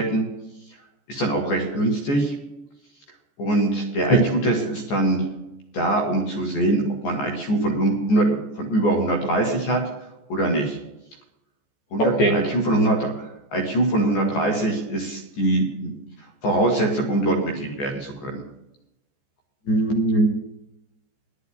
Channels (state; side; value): late; right; 14 ms